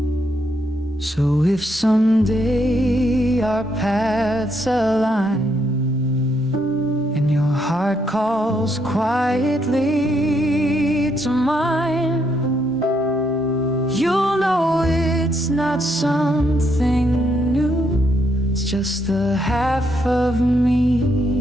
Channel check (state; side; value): normal; both; correlation 0.75